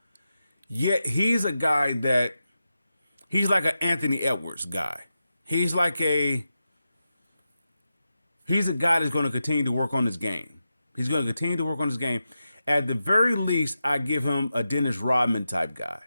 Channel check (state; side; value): inverted; both; correlation -0.90